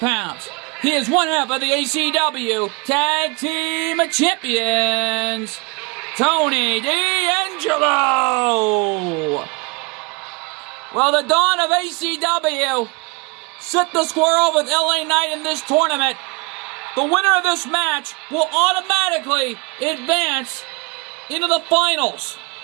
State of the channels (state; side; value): quieter; left; 28.1 dB